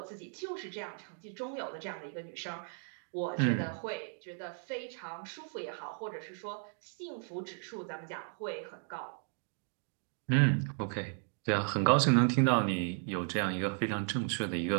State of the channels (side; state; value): left; silent; 54 dB below the other